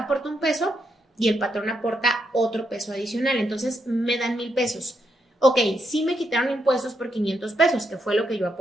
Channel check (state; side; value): normal; both; correlation 0.80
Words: un peso y el patrón aporta otro peso adicional. Entonces me dan 1,000 pesos. Ok, sí me quitaron impuestos por 500 pesos, que fue lo que yo